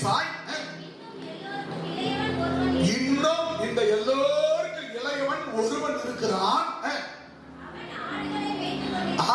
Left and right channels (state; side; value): identical; both; correlation 1.00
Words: இன்னும் இந்த எல்லோருக்கும் இளையவன் ஒருவன் இருக்கிறான்,